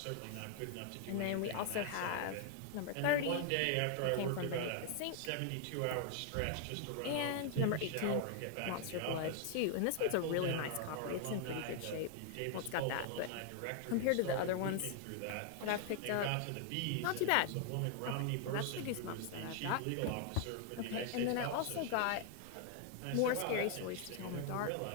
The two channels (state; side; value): different; both; correlation 0.00